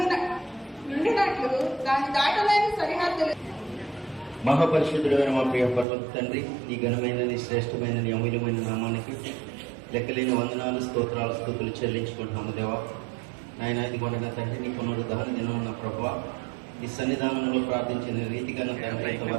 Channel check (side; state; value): left; drops out; at 5.9 s